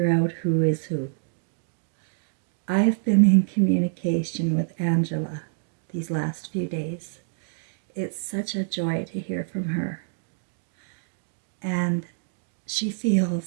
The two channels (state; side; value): silent; left; digital silence